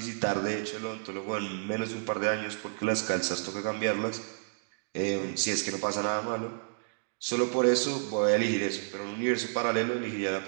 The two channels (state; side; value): silent; left; digital silence